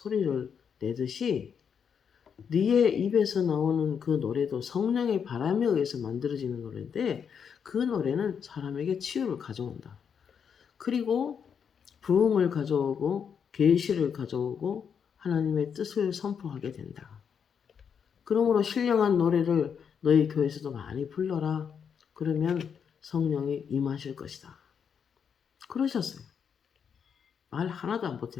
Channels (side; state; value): right; quieter; 7.2 dB